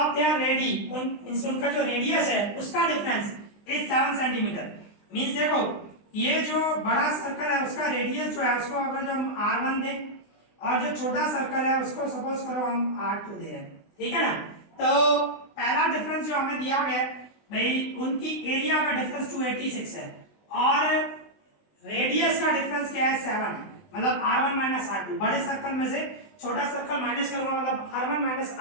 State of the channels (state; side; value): late; right; 20 ms